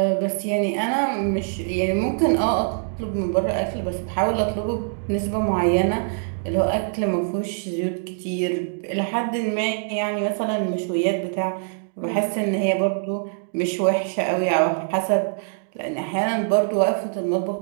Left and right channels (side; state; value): left; silent; digital silence